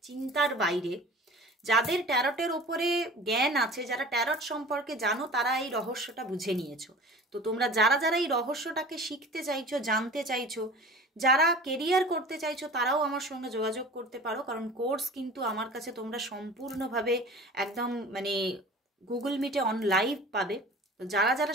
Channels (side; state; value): both; normal; correlation 0.40